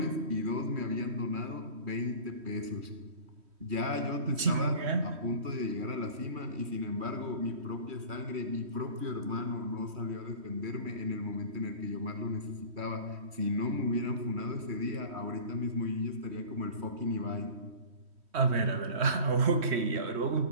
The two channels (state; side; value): late; left; 3.1 ms